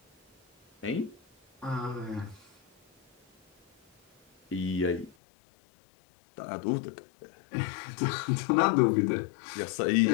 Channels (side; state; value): right; drops out; at 5.1 s